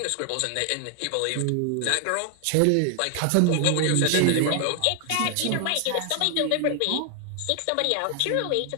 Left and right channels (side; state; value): both; different; correlation 0.00